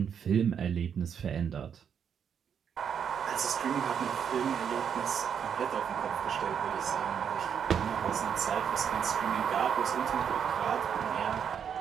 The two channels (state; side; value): quieter; left; 7.8 dB